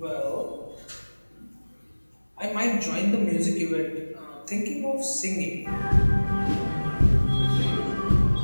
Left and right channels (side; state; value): both; inverted; correlation -1.00